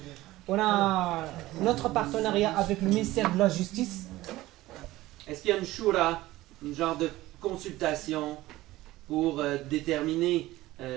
On a notre partenariat avec le ministère de la Justice. Est-ce qu'il y a une shura, une genre de consultation pour déterminer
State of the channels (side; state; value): left; quieter; 17.3 dB